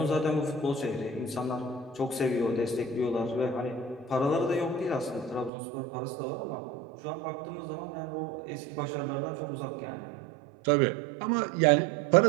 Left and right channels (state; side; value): drops out; left; at 5.5 s